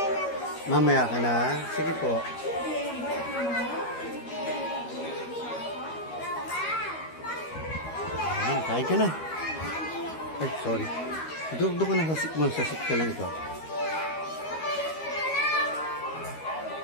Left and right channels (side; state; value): right; late; 13 ms